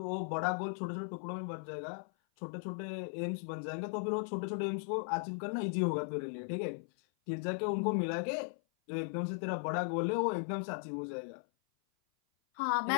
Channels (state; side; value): silent; right; 53 dB below the other